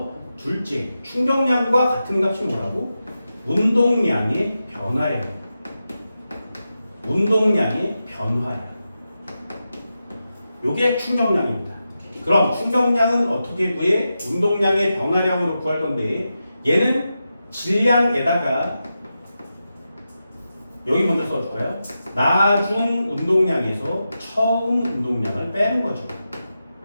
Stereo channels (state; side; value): inverted; both; correlation -0.90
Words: 둘째, 충격량과 같은 값이 뭐라고? 운동량의 변화량. 운동량의 변화량. 이게 충격량입니다. 그럼 충격량은 어떻게 구해? 운동량의 변화량으로 구할 건데 얘는 질량에다가 여기 먼저 써줄까요? 나중 운동량에서 처음 운동량을 빼는 거죠.